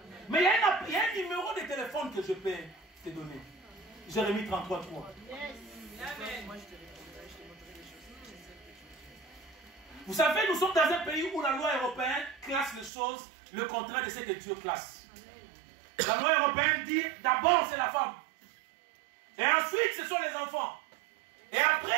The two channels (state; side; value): drops out; left; at 12.9 s